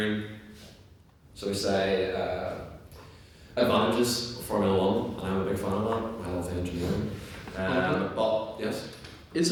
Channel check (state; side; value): identical; both; correlation 1.00